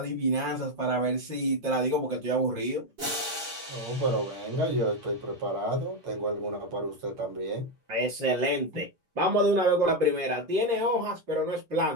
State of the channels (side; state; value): left; late; 7.1 ms